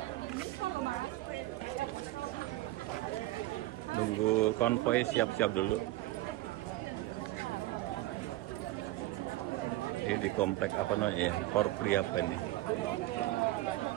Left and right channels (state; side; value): quieter; left; 17.4 dB